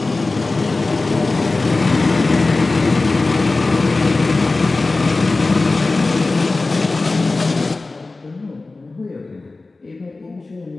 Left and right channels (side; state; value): right; quieter; 3.4 dB